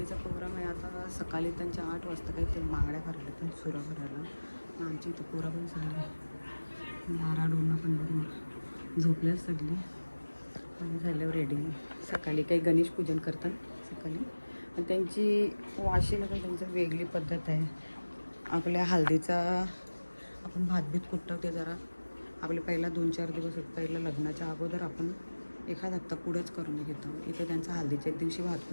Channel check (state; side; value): inverted; both; correlation -1.00